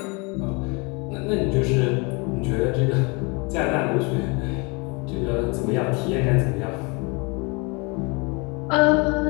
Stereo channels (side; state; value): right; quieter; 29.6 dB